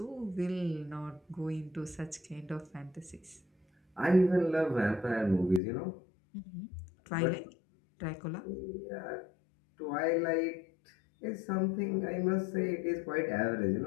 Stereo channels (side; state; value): right; drops out; at 5.6 s